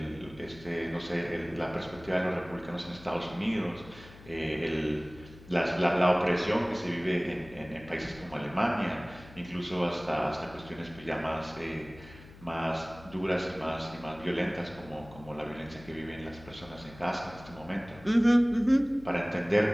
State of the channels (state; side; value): noise; left; hum, 19 dB below the sound